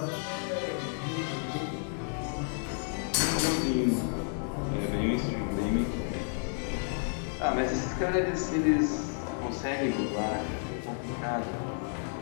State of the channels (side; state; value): right; silent; 57 dB below the other